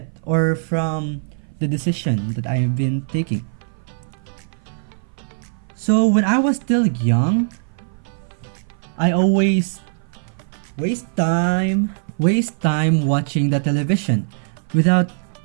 or from the decision that I have been taking. So when I was still young, I always waste time watching the television without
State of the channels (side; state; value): left; silent; 58 dB below the other